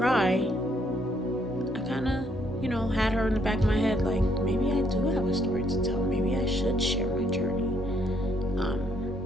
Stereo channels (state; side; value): normal; both; correlation 0.70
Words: I kind of, had her in the back of my head, like, maybe I do have a story to tell. Maybe I should share my journey.